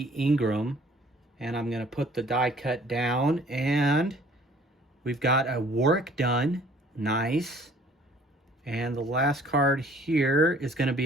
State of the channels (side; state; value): both; normal; correlation 0.55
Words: Ingram. And I'm going to put the die cut down. And we've got a Warwick Dunn. Nice. And the last card here is going to